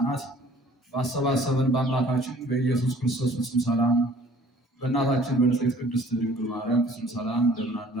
ባሰባሰበን በአምላካችን በኢየሱስ ክርስቶስ ፍጹም ሰላም በእናታችን በንጽሕት ቅድስት ድንግል ማርያም ፍጹም ሰላም እንደምን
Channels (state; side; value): normal; both; correlation 0.53